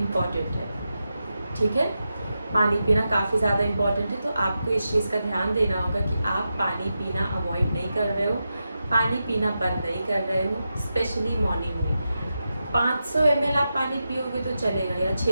है। ठीक है, पानी पीना काफ़ी ज़्यादा इम्पॉर्टेंट है, तो आपको इस चीज़ का ध्यान देना होगा कि आप पानी पीना अवॉइड नहीं कर रहे हो, पानी पीना बंद नहीं कर रहे हो। स्पेशली मॉर्निंग में 500 ml आप पानी पियोगे तो चलेगा, या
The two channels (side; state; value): both; inverted; correlation -0.89